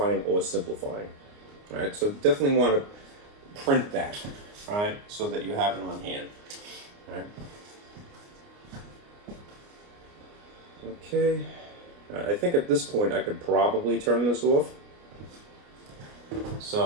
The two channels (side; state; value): left; late; 29 ms